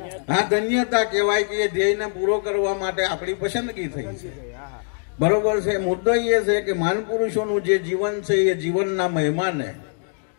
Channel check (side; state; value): right; silent; 59 dB below the other